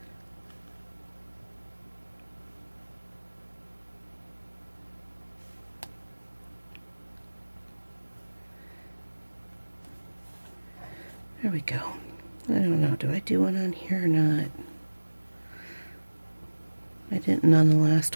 There we go. I don't know, do I do one on here or not? I didn't on the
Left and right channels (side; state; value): both; inverted; correlation -1.00